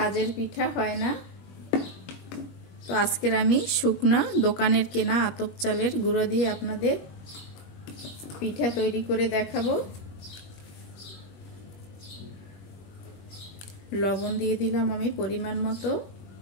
পিঠা হয় না, তো আজকের আমি শুকনা দোকানের কেনা আতপ চালের গুঁড়ো দিয়ে আপনাদের পিঠা তৈরি করে দেখাবো। লবণ দিয়ে দিলাম আমি পরিমাণ মতো।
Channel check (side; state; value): right; late; 21 ms